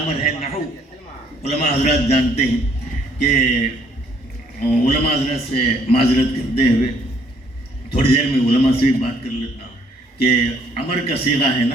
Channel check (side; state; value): both; normal; correlation 0.65